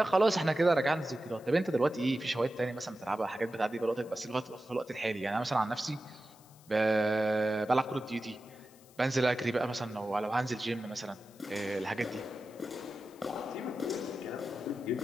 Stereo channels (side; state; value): left; noise; hiss, 26 dB below the sound